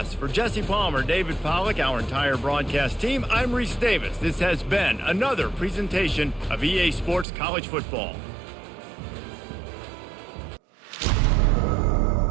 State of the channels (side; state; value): left; drops out; at 7.2 s